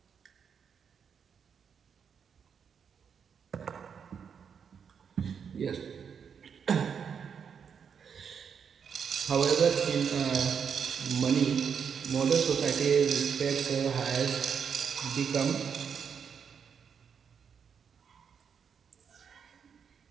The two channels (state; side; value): quieter; left; 7.0 dB